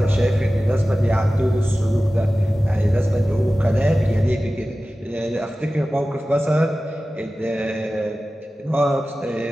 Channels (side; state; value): both; normal; correlation 0.95